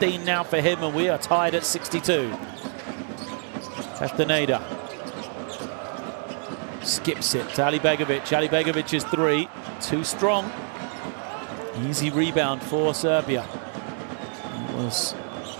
now for him, and we are tied at 62. Castaneda skips it to Alibegovic. Alibegovic is 3. Too strong. Easy rebound for Serbia. It was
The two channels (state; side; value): silent; left; 56 dB below the other